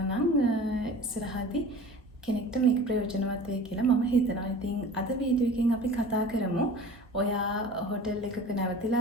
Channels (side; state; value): both; normal; correlation 0.41